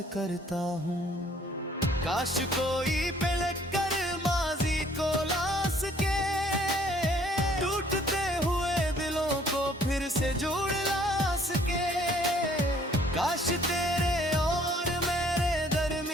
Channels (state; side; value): normal; both; correlation 0.60